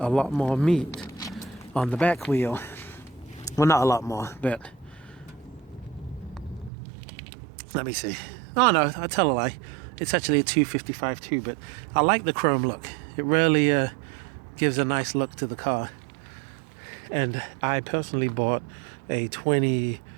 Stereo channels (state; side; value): drops out; left; at 6.7 s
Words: lot more meat on the back wheel. Well, not a lot more, but let me see. Oh no, I tell a lie. It's actually a 255 too, but I like the chrome look. It really gives a nice look to the car. And I personally bought a